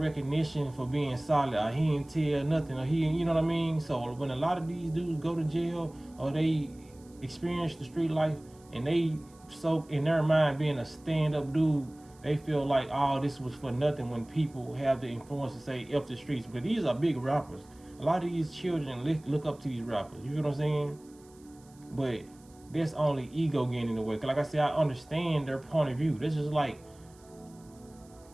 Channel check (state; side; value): noise; right; hiss, 28 dB below the sound